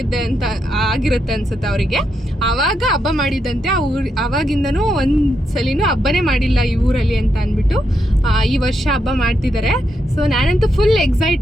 ಅನ್ಸುತ್ತೆ ಅವರಿಗೆ. ಆವಾಗ ಹಬ್ಬ ಮಾಡಿದಂತೆ. ಅವಾಗಿಂದನೂ ಒಂದು ಸಲಿನೂ ಹಬ್ಬನೇ ಮಾಡಿಲ್ಲ ಈ ಊರಲ್ಲಿ ಅಂತ ಅಂದ್ಬಿಟ್ಟು ಈ ವರ್ಷ ಹಬ್ಬ ಮಾಡ್ತಿದ್ದಾರೆ. ಸೊ ನಾನಂತೂ ಫುಲ್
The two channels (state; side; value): normal; both; correlation 0.82